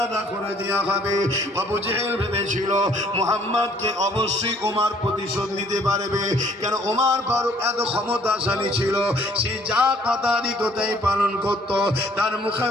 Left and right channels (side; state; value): both; normal; correlation 0.60